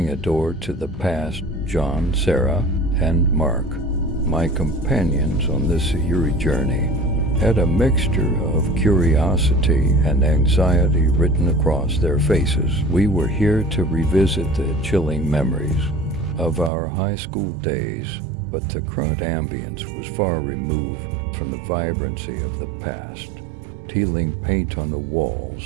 a door to the past. John, Sarah, and Mark, my companions on this eerie journey, had a mixture of curiosity and anxiety written across their faces. We were here to revisit the chilling memories of our high school days, but the current ambience was far removed from the vibrancy of the past. Peeling paint on the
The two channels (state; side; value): drops out; left; at 16.7 s